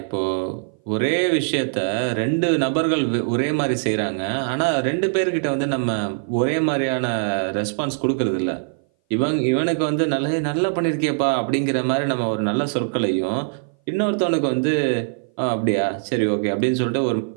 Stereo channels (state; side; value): silent; left; 59 dB below the other